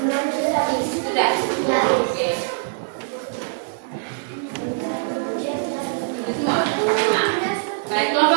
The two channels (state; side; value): silent; left; digital silence